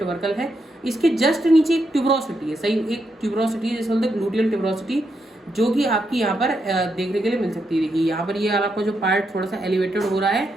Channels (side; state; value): both; normal; correlation 0.81